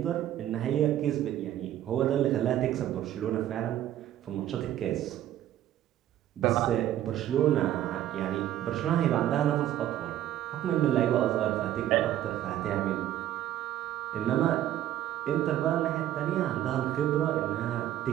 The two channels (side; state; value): left; quieter; 12.4 dB